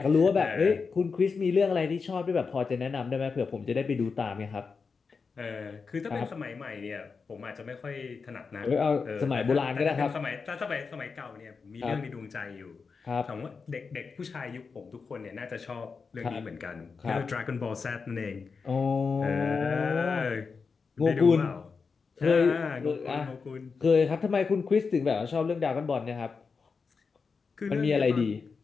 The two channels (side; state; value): right; quieter; 5.0 dB